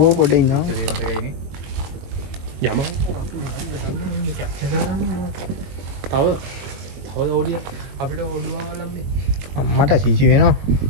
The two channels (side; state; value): left; late; 22 ms